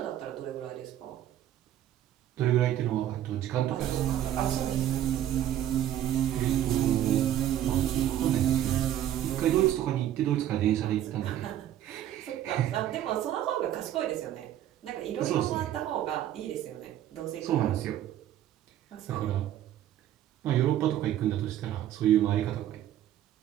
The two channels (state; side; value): quieter; left; 11.8 dB